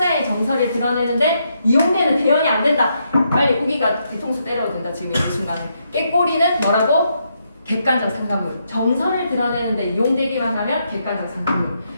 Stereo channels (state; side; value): inverted; both; correlation -0.79